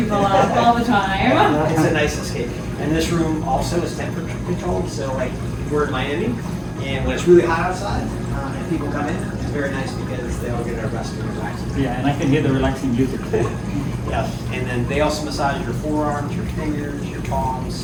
up all the time. It's a nice escape. And this room also is temperature controlled, so like we're in Miami, and when it's really hot outside, and people come in, it's very nice because they all get a rest and relax. Yeah, and I can hear the relaxing music. Yeah, and then they also massage your forearms, your fingers, your palms,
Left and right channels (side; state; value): both; identical; correlation 1.00